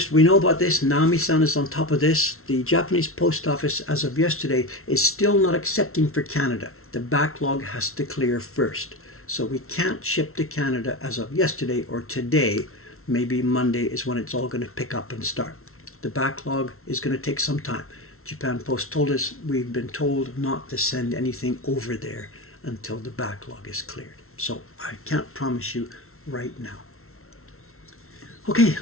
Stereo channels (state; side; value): late; right; 0.62 ms